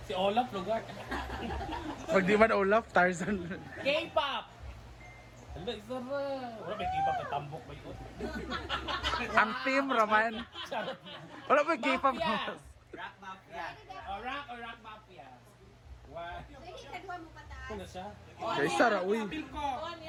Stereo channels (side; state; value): both; identical; correlation 1.00